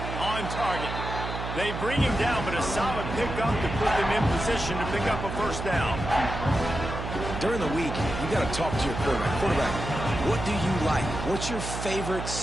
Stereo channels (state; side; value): noise; right; hum, 6 dB below the sound